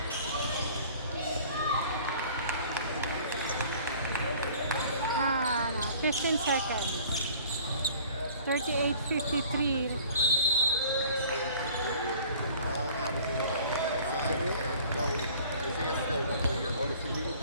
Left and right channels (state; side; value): inverted; both; correlation -0.50